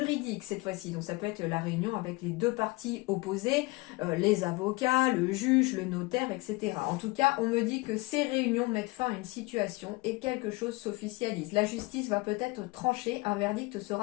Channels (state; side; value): quieter; right; 23.4 dB